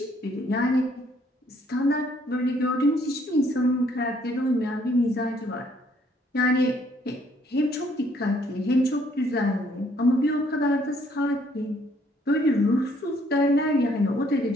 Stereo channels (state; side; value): normal; both; correlation 0.66